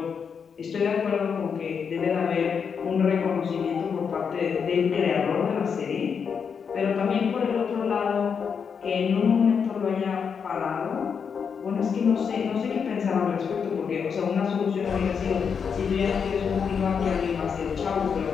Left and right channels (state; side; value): quieter; right; 6.5 dB